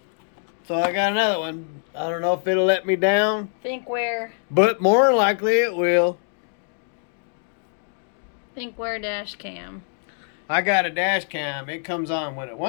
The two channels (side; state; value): right; silent; 63 dB below the other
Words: got another one. I don't know if it'll let me down. Thinkware. But more than likely it will. Thinkware dash cam. I got a dash cam. It comes on when it